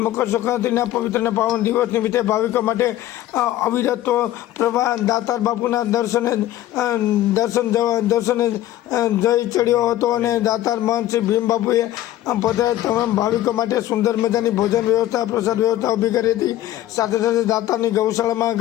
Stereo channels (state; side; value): quieter; right; 14.1 dB